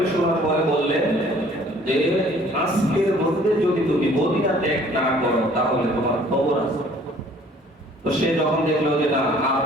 শোনার পরে বললেন যে আজকের মধ্যে যদি তুমি মদিনা ত্যাগ না করো তাহলে তোমার খবর আছে। তো সে যখন দেখলো যে না আর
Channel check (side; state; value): both; normal; correlation 0.55